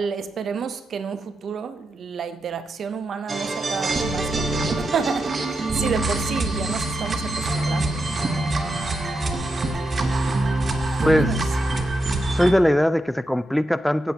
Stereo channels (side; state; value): both; normal; correlation 0.87